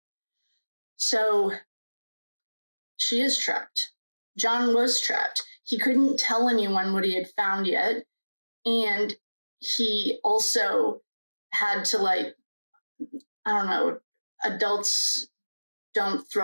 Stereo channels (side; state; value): both; inverted; correlation -1.00